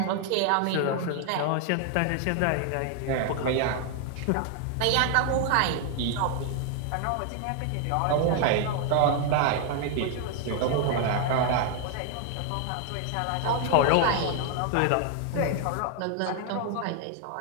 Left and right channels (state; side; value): different; both; correlation 0.00